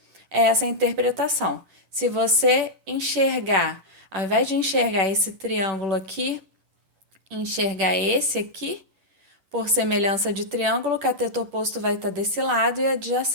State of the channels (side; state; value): left; late; 10 ms